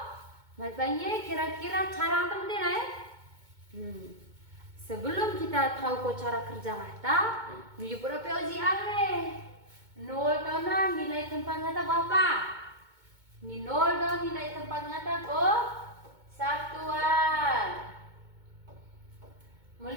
Banyak kira-kira cara apa penting Sebelum kita tahu ko cara kerja ngata, minggu berapa uji are? 0 tahu na nilai tempat ngata berapa? Ni 0 tahu nilai tempat ngata ko satuan.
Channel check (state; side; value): late; left; 2.2 ms